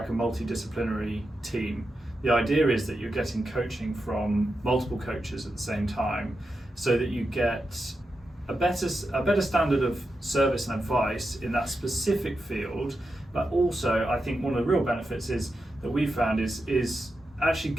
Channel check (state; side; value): normal; both; correlation 0.88